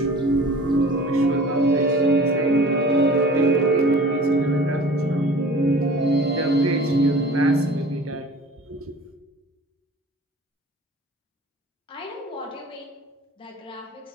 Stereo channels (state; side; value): normal; both; correlation 0.43